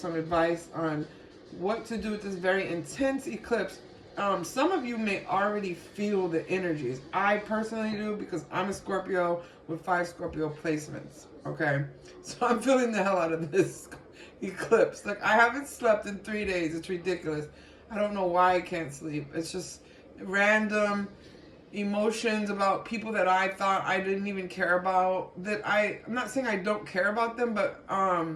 advice on what to do with this very intense eclipse. Some of you may already feel the energies. I personally do because I'm a Scorpio with 5 Scorpio placements. Okay? So I'm feeling the hell out of this eclipse. Like, I haven't slept in 3 days. It's ridiculous. I don't know why I can't sleep. It's just random emotions about people that I thought I didn't even care about. I'm not saying I don't care about them, but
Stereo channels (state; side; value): identical; both; correlation 1.00